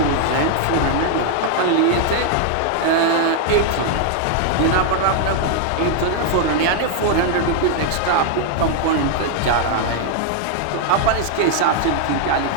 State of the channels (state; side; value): different; both; correlation 0.00